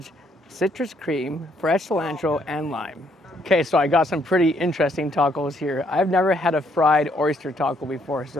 citrus cream, fresh cilantro, and lime. Okay, so I got some pretty interesting tacos here. I've never had a fried oyster taco before,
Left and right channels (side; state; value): both; normal; correlation 0.70